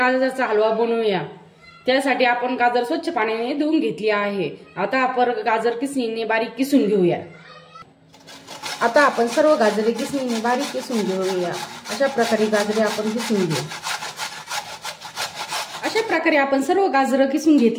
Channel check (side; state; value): both; identical; correlation 1.00